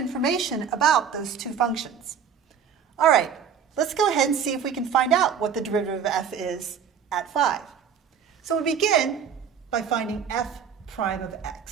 about those two functions. All right, let's go ahead and see if we can find out what the derivative of f is at 5. So we begin by finding f prime of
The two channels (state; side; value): quieter; left; 7.4 dB